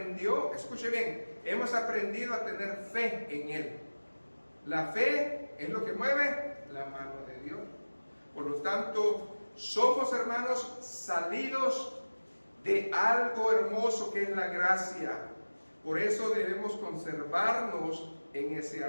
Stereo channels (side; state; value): both; inverted; correlation -1.00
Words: escuche bien, hemos aprendido a tener fe en Él. La fe es lo que mueve la mano de Dios. Por lo tanto, somos, hermanos, salidos de algo hermoso que es la gracia. Por eso debemos conservarnos en ese